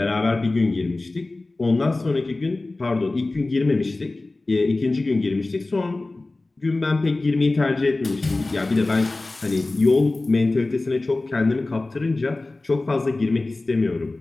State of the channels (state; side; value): quieter; right; 3.1 dB